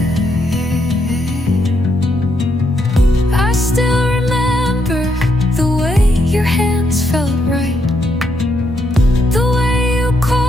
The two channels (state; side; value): normal; both; correlation 0.78